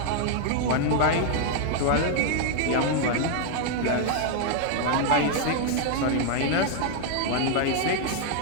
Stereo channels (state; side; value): different; both; correlation 0.00